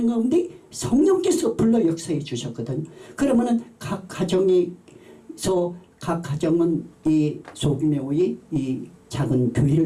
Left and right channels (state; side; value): identical; both; correlation 1.00